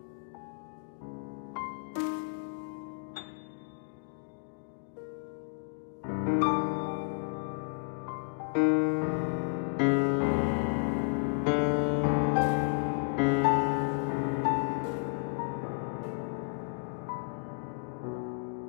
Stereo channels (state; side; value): silent; right; digital silence